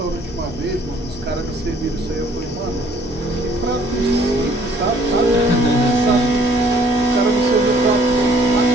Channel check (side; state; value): both; normal; correlation 0.60